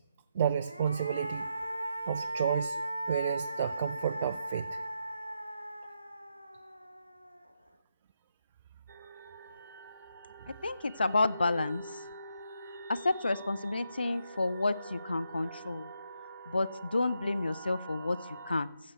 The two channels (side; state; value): both; inverted; correlation -0.81